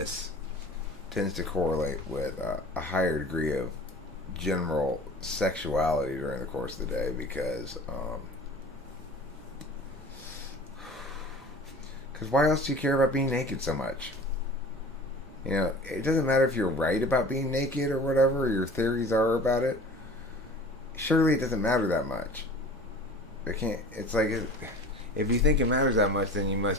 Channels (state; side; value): noise; right; rumble, 22 dB below the sound